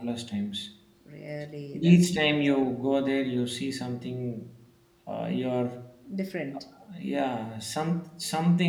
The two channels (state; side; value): identical; both; correlation 1.00